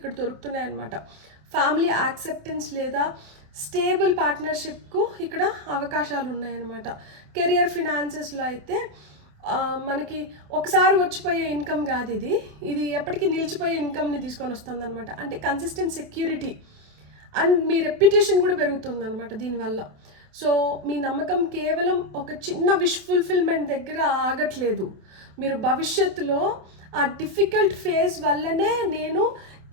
దొరుకుతున్నాయి అనమాట. ఫ్యామిలీ యాక్సెప్టెన్స్ లేదా స్టేబుల్ పార్ట్నర్షిప్కు ఇక్కడ అవకాశాలు ఉన్నాయన్నమాట. కెరియర్ ఫినాన్సెస్లో అయితే మనకి ఒకసారి వచ్చిపోయే ఇన్కమ్ కాదు, ఇది ఎప్పటికీ నిలిచిపోయే ఇన్కమ్ని తీసుకొని వస్తుంది అనమాట. అంటే consistent security and me reputation కూడా పెరుగుతుంది అనమాట దీనివల్ల. సో మీ నమ్మకం కేవలం ఒక చిన్న విష్ ఫుల్ఫిల్మెంట్ దగ్గర ఆగట్లేదు, మీరు భవిష్యత్తులో ఆ డిఫికల్ట్ ఫేజ్ వల్లనే నేను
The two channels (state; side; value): late; left; 28 ms